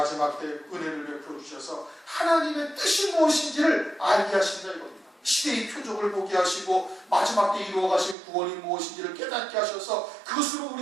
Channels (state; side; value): drops out; left; at 8.2 s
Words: 때 은혜를 베풀어 주셔서 하나님의 뜻이 무엇인지를 알게 하신다 이겁니다. 시대의 표적을 보게 하시고 마지막 때 이루어가신 구원이 무엇인지를 깨닫게 하셔서 그것으로